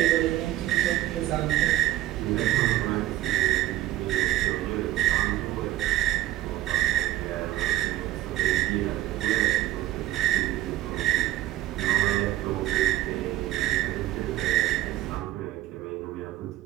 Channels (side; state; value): left; quieter; 14.6 dB